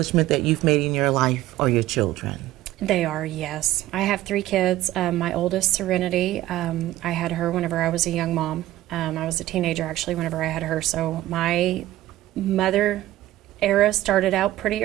that you've made in your life are your children. They are, yes. I have 3 kids. My oldest, Serenity, I had her whenever I was a young mom. I was a teenager, actually, whenever I had her. So my mother era started out pretty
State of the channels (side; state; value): left; quieter; 15.1 dB